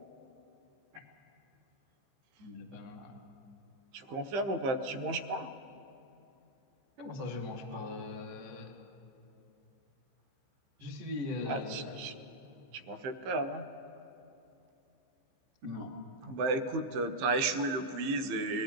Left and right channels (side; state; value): left; late; 15 ms